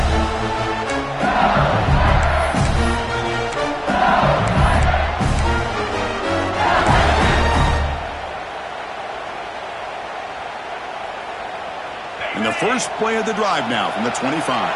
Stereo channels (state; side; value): identical; both; correlation 1.00